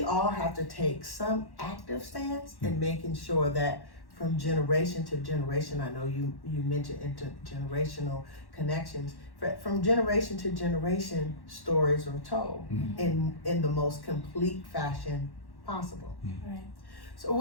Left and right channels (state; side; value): late; right; 1.1 ms